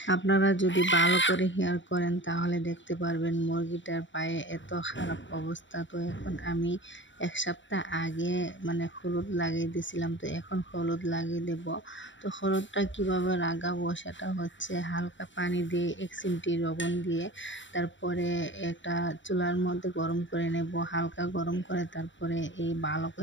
আপনারা যদি ভালো করে হেয়ার করেন তাহলে দেখতে পারবেন মুরগিটার পায়ে এত খারাপ অবস্থা। তো এখন আমি 1 সপ্তাহ আগে হলুদ লাগিয়ে দিয়েছিলাম, তো এখন হলুদ লাগিয়ে দেব। তো হলুদটা কিভাবে লাগাবো সেটা হচ্ছে হালকা পানি দিয়ে 1 চিমটি লবণ দিয়ে তারপরে একটা চুলার মধ্যে গরম করে নেব, হালকা গরম করে তারপরে এই ভালো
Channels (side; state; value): right; late; 0.54 ms